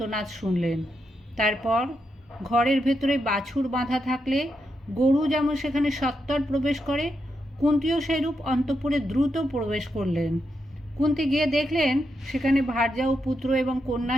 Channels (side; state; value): both; normal; correlation 0.84